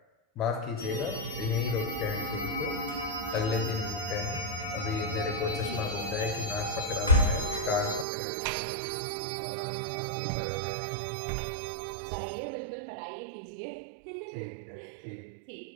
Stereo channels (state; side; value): drops out; left; at 8.1 s